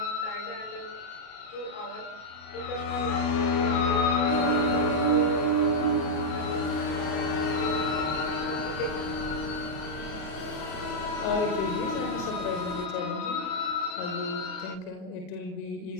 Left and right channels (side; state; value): right; late; 33 ms